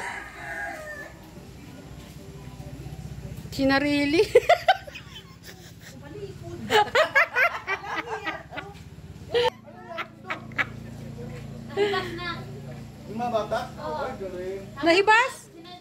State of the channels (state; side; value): identical; both; correlation 1.00